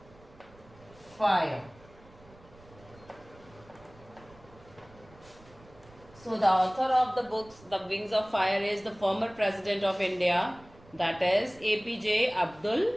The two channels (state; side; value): noise; right; rumble, 24 dB below the sound